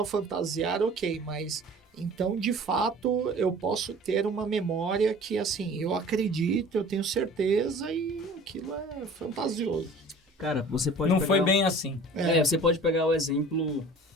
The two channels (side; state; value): both; normal; correlation 0.45